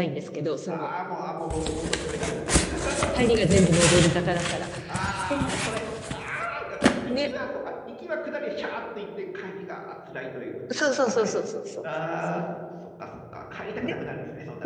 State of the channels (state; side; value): identical; both; correlation 1.00